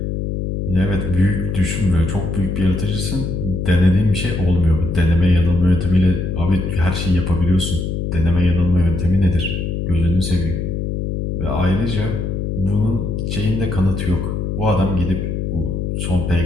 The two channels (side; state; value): left; noise; hum, 2 dB below the sound